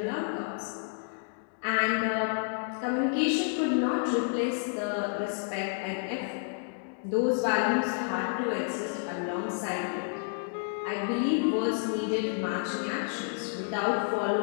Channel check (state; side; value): silent; right; 58 dB below the other